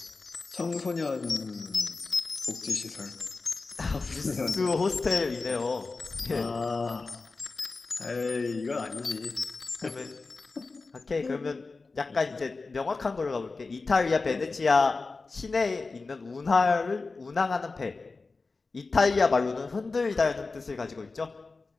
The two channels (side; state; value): right; quieter; 3.9 dB